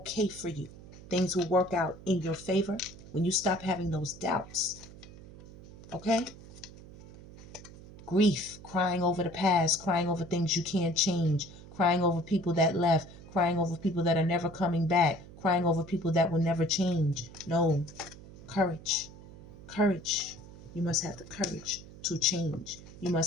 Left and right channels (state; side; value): noise; right; hum, 18 dB below the sound